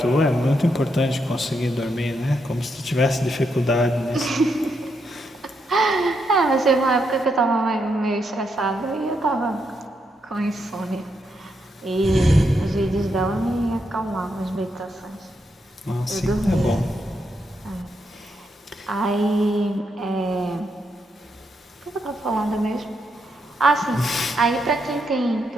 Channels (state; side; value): normal; both; correlation 0.80